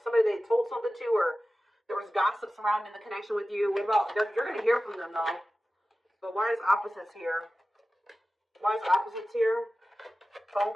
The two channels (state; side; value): normal; both; correlation 0.95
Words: they told something to, or there was gossip surrounding the connection with you. What about, you're going to hear from them, though. But why is opposites here? Why is opposites here? Phone